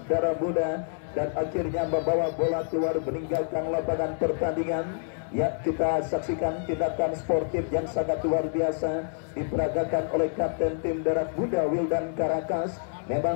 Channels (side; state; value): right; silent; digital silence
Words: darah muda dan akhirnya membawa bola keluar meninggalkan lapangan pertandingan. Ya, kita saksikan tindakan sportif yang sangat luar biasa diperagakan oleh kapten tim darat muda Wildan Karakas.